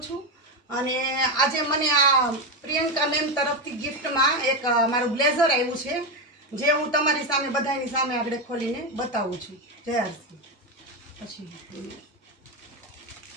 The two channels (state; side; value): normal; both; correlation 0.11